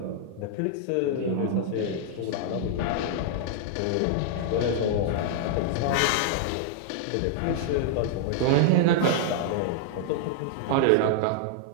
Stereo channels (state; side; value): different; both; correlation -0.01